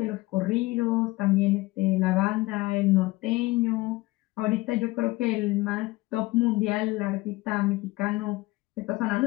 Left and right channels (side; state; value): right; quieter; 20.4 dB